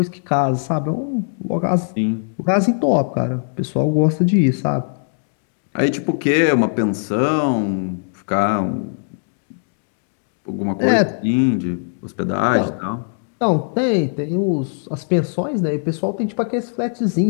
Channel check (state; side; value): silent; right; digital silence